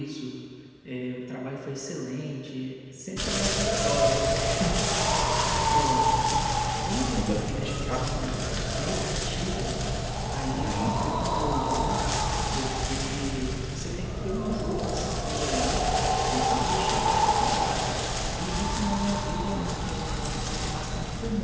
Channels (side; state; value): both; identical; correlation 1.00